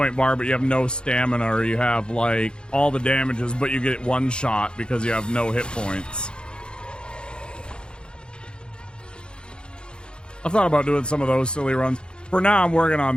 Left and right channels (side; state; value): right; late; 0.051 ms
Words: bar, but you have no stamina, or you have like all the damages, but you get one shot because you have no hit points. I've thought about doing some of those silly runs. For now, I'm working